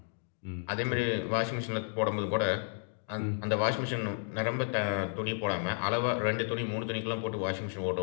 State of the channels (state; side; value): silent; right; 56 dB below the other